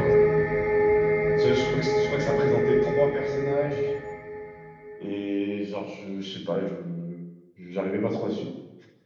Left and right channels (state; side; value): identical; both; correlation 1.00